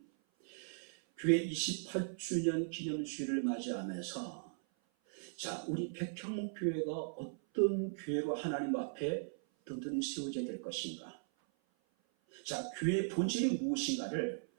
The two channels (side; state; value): left; silent; 52 dB below the other